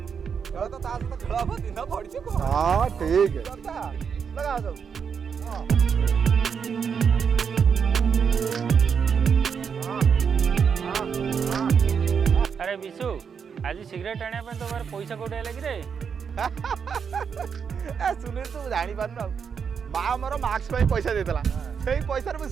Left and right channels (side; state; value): left; quieter; 6.6 dB